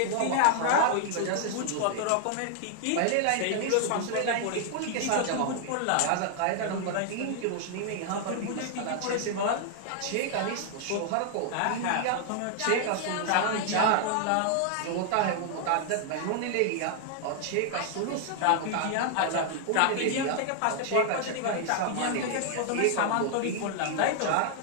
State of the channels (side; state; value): both; different; correlation 0.00